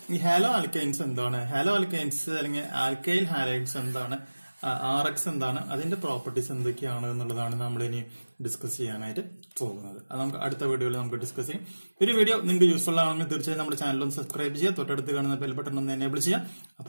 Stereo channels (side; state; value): both; inverted; correlation -1.00